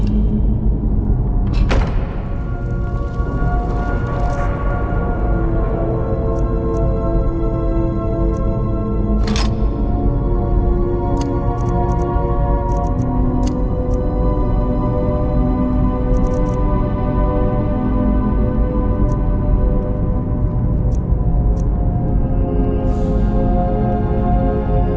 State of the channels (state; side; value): identical; both; correlation 1.00